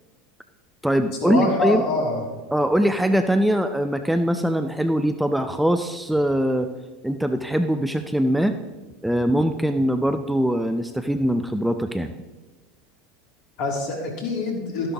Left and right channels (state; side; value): normal; both; correlation 0.81